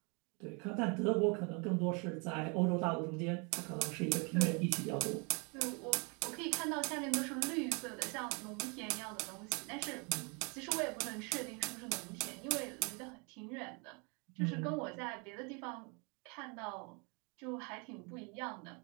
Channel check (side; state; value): left; quieter; 33.0 dB